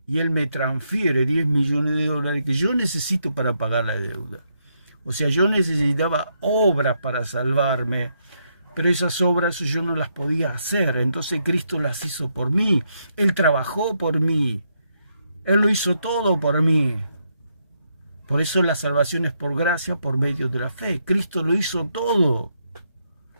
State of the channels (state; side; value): inverted; both; correlation -0.78